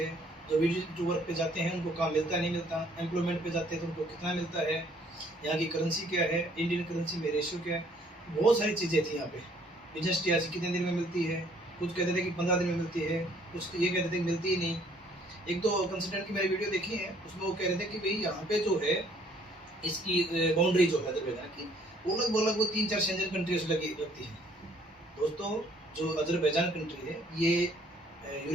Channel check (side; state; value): both; normal; correlation 0.62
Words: जो विजिट वर्क पे जाते हैं उनको काम मिलता नहीं मिलता, एम्प्लॉयमेंट पे जाते हैं तो उनको कितना मिलता है, यहाँ की करेंसी क्या है, इंडियन करेंसी में रेशियो क्या है। बहुत सारी चीज़ें थी यहाँ पे। बिजनेस टीआरसी कितने दिन में मिलती है, कुछ कहते थे कि 15 दिन में मिलती है, कुछ ये कहते थे कि मिलती ही नहीं। एक तो कंसल्टेंट की मैंने वीडियो देखी है, उसमें वो कह रहे थे कि भाई यहाँ पे जो है इसकी बाउंड्री जो है अजरबैजान की वो लगभग वो 3-4 शेंजन कंट्रीज लगी लगती है। दोस्तों जो अजरबैजान कंट्री है ये